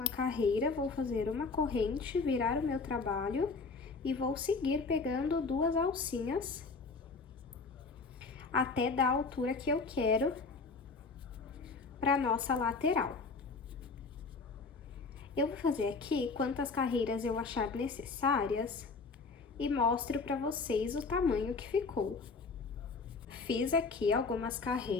carreira, vou fazer uma corrente, virar o meu trabalho e vou seguir pegando duas alcinhas até dar a altura que eu quero para nossa lateral. Eu vou fazer aqui quantas carreiras eu achar necessárias e mostro para vocês o tamanho que ficou. Fiz aqui algumas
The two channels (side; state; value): right; quieter; 4.3 dB